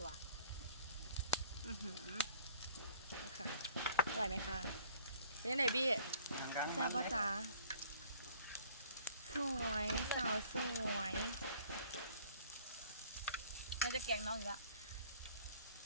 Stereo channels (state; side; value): inverted; both; correlation -0.55